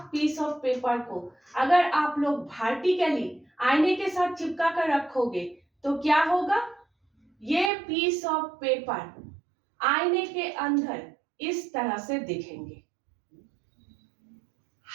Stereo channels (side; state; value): left; drops out; at 7.7 s